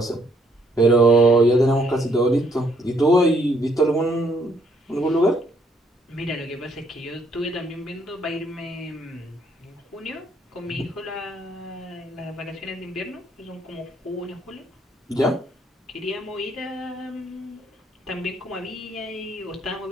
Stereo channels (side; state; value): both; normal; correlation 0.69